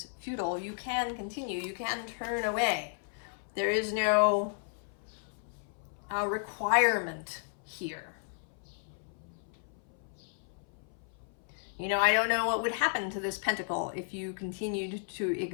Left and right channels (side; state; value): right; silent; 55 dB below the other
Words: futile, you can continue, you can turn away. There is no requirement here. You know, I don't know what would happen to this pentacle if you continued to